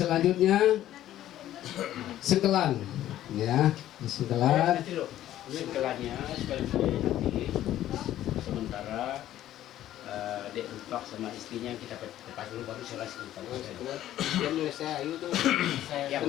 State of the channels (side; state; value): right; quieter; 12.9 dB